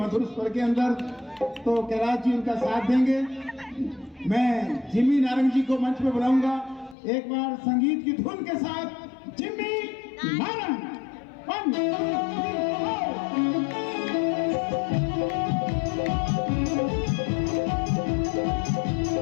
स्वर के अंदर, तो कैलाश जी उनका साथ देंगे। मैं जिम्मी नारंग जी को मंच पे बुलाऊंगा एक बार संगीत की धुन के साथ। जिम्मी नारंग, 1 2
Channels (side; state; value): right; drops out; at 7.0 s